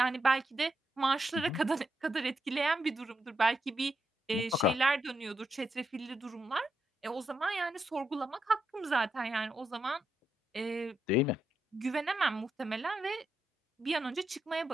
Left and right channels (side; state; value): both; normal; correlation 0.82